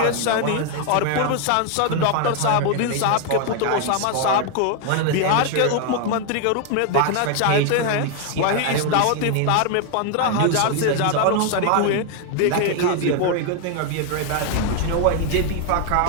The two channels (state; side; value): different; both; correlation 0.00